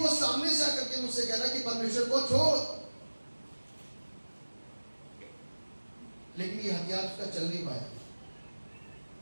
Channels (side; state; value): both; inverted; correlation -1.00